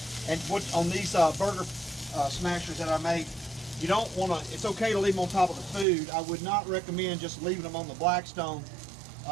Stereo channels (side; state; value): left; drops out; at 5.9 s